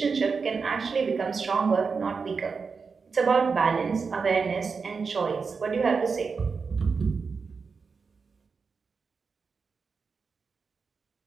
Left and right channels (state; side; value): quieter; left; 5.1 dB